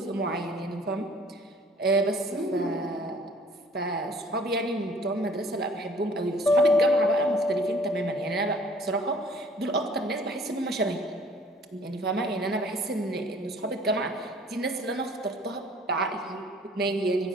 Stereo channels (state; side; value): normal; both; correlation 0.54